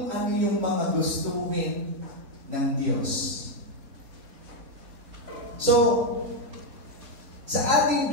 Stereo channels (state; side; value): late; left; 4.2 ms